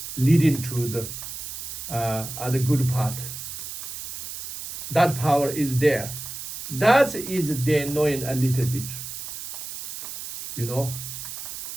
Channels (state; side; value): noise; right; hiss, 9 dB below the sound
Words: leading to the other good path. That power is there. That is they knowing a little bit, you know.